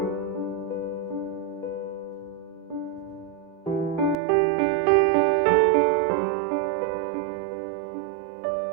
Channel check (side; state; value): left; drops out; at 4.2 s